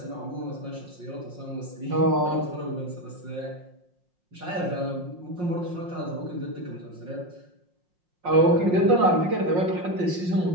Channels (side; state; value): left; late; 5.6 ms